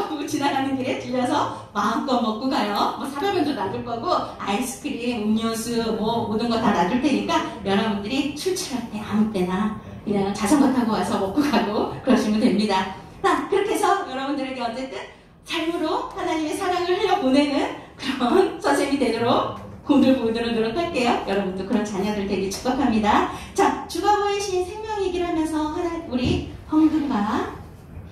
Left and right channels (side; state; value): both; identical; correlation 1.00